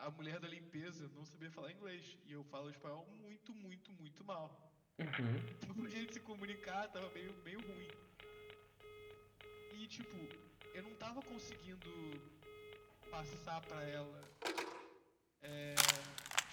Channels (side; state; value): both; identical; correlation 1.00